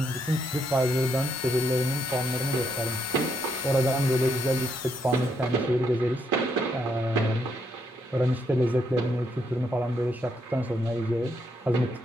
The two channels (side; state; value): both; normal; correlation 0.76